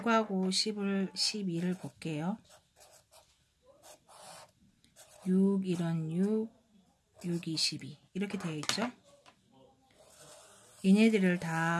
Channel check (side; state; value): both; identical; correlation 1.00